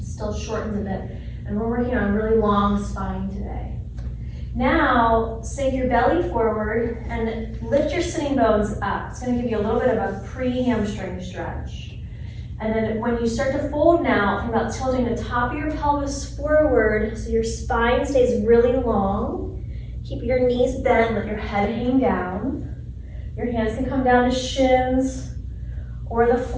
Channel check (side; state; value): both; identical; correlation 1.00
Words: still shortens a bit, and we're working on a really long spine today. Now, belly forward and lift your sitting bones up. It's gonna give you a little bit of a pre-hamstring stretch. And then when you start to fold now, think about tilting the top of your pelvis forward so your spine stays really long. Keep your knees bent, let your head hang down. Your hands can come down to shins or the